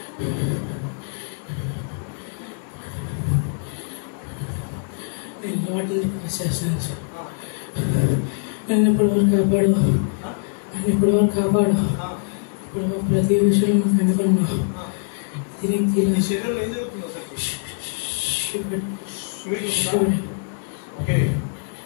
వాటిని రిక్వెస్ట్ చేస్తున్నాను సార్. నన్ను ఇప్పటివరకు కాపాడు. ఇప్పుడు ప్రతి విషయంలో మాకు అనుకున్నావు. నీ శరీరంలో ఏం జరుగుతుంది అసలు? ఓకే,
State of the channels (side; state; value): right; silent; 63 dB below the other